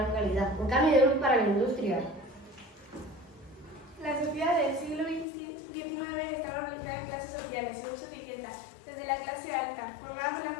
calidad. Un cambio de luz para la industria. La sociedad del siglo XIX estaba organizada en clases sociales, según su etiqueta, desde la clase alta, formada por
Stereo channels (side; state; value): right; drops out; at 5.2 s